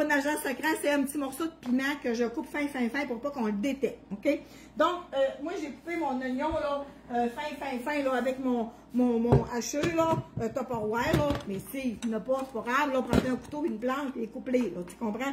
agent secret, c'est un petit morceau de piment que je coupe fin pour pas qu'on le détecte, OK? Donc, moi, j'ai coupé mon oignon, là, fin, là, avec mon hacheux, là, Tupperware, là. Mais si, il n'y en a pas, c'est pas grave, là, prends un couteau, une planche, et coupe-les, là, tu comprends?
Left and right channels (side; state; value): both; identical; correlation 1.00